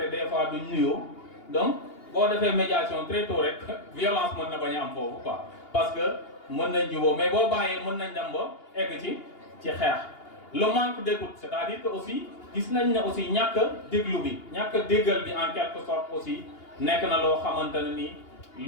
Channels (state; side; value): late; right; 2.8 ms